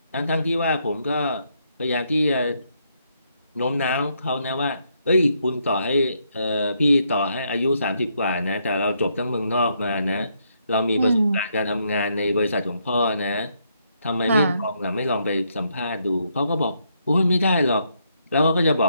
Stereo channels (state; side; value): inverted; both; correlation -0.76